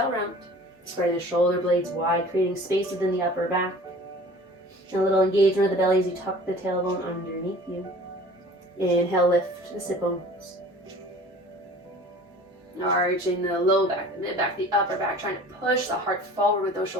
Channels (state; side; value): normal; both; correlation 0.45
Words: round. Spread the shoulder blades wide, creating space within the upper back. And a little engagement of the belly as you tuck the tailbone underneath you. Inhale, lift the sit bones. Arching the low back, the mid back, the upper back, trying to push the heart forward with those